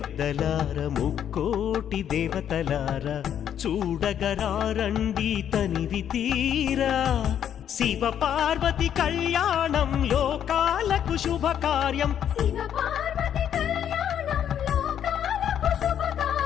ముక్కోటి దేవతలార చూడగరారండి తనివి తీరా శివ పార్వతి కళ్యాణం లోకాలకు శుభకార్యం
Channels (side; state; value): right; quieter; 9.5 dB